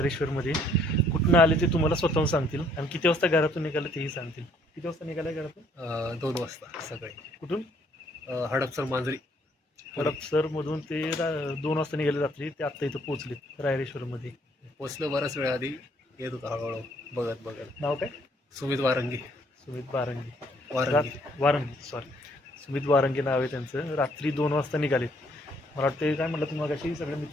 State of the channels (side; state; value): both; normal; correlation 0.64